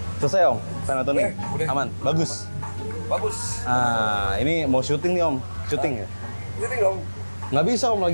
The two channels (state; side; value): inverted; both; correlation -1.00